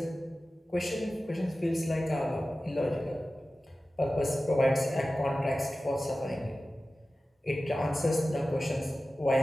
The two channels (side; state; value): both; normal; correlation 0.95